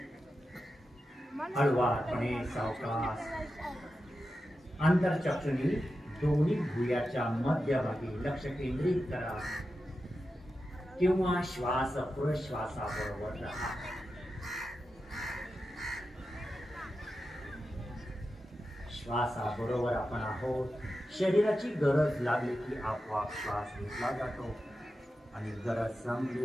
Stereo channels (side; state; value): both; normal; correlation 0.91